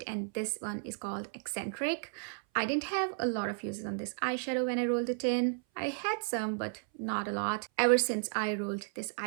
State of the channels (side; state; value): left; silent; 55 dB below the other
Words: and this one is called Eccentric. I didn't have a lot of uses on this eyeshadow when I rolled it in. I had some, but not a lot. Ever since I rolled this